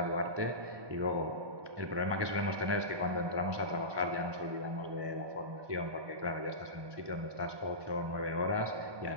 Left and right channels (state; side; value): late; left; 1.2 ms